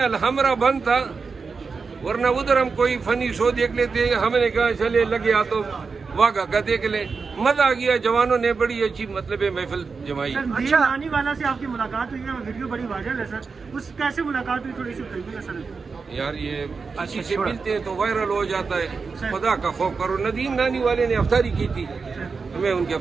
بند تھا, ورنہ ادھر ہم کوئی فنی شو دیکھ لیتے. ہم نے کہا چلے لگے آ تو واگا کا دیکھ لیں. مزہ آ گیا, جوانوں نے بڑی اچھی مطلب محفل جمائی. اچھا, نانی والا سے آپ کی ملاقات ہوئی ہے, ویڈیو بڑی وائرل ہے سر, اس کیسے ملاقات ہوئی تھوڑی سی بتائیے نا سر. یار یہ کسی سے ملتے ہیں تو وائرل ہو جاتا ہے. خدا کا خوف کرو. ندیم نانی والے نے افطاری کی تھی, میں ان کی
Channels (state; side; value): quieter; left; 4.9 dB